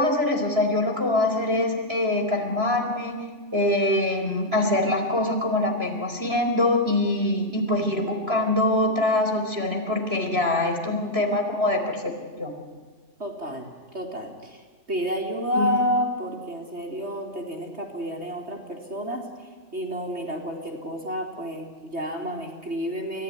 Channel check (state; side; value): late; left; 3.0 ms